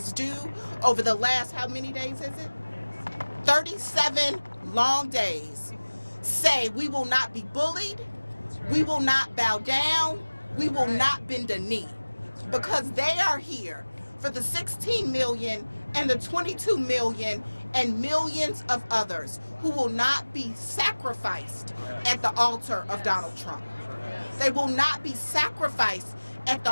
do over the last, how many days is it? 37 long days, say we will not be bullied, we will not bow down, we will not bend a knee, because they are here for the 16 million and the 22 million and millions of others who will not be sacrificed at the altar of Donald Trump. They will not be sacrificed at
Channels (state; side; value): inverted; both; correlation -1.00